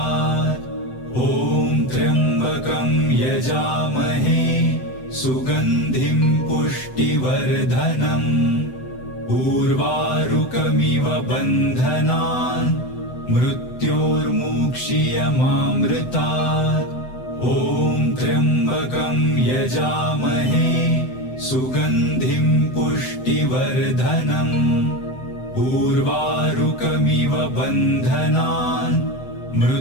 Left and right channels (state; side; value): late; right; 7.9 ms